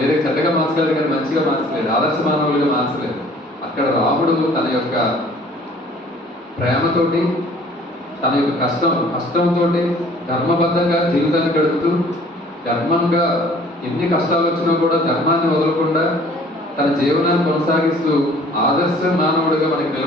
చెడ్డగా మార్చగలరు కానీ మంచిగా మార్చలేదు, ఆదర్శ మానవులుగా మార్చలేదు. అక్కడ రాముడు తన యొక్క ప్రేమతోటి, తన యొక్క కష్టంతో ధర్మబద్ధంగా జీవితాన్ని గడుపుతూ, ధర్మంగా ఎన్ని కష్టాలు వచ్చినా కూడా ధర్మాన్ని వదలకుండా తన జీవనాన్ని కొనసాగిస్తూ ఆదర్శ మానవుడిగా మనకి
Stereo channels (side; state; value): both; normal; correlation 0.53